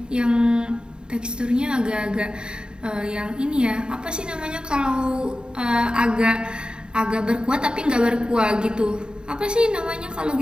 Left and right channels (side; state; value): left; late; 0.049 ms